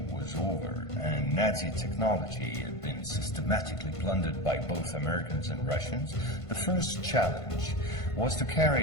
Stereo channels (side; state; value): right; late; 1.5 ms